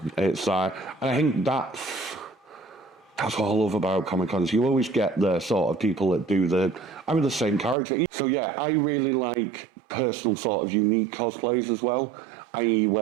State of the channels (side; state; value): left; drops out; at 7.8 s